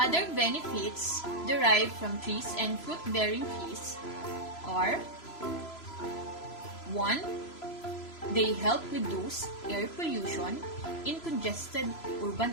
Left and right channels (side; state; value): right; late; 3.0 ms